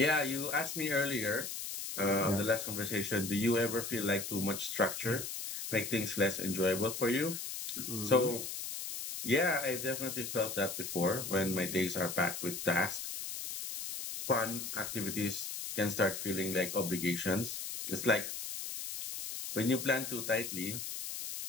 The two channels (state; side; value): noise; left; hiss, 6 dB below the sound